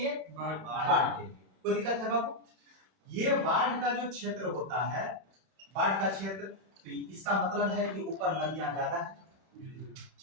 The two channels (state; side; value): late; left; 31 ms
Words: बाढ़ के लिए। कोई दिक्कत है बाबू? ये बाढ़ का जो क्षेत्र होता है, बाढ़ का क्षेत्र, तो इसका मतलब है कि ऊपर नदियां ज्यादा है,